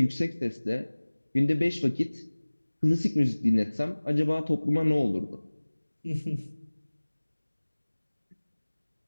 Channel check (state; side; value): inverted; both; correlation -1.00